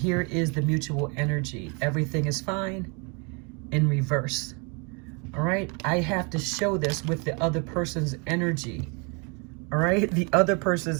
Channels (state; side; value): quieter; left; 32.5 dB